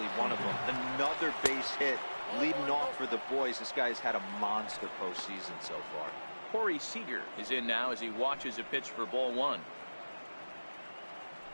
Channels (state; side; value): inverted; both; correlation -1.00